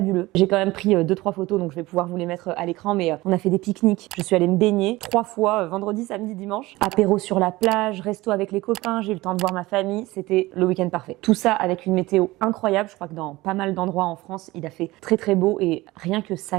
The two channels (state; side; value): quieter; left; 19.6 dB